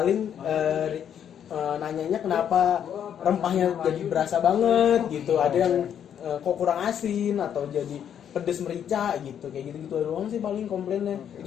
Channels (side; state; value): right; quieter; 9.1 dB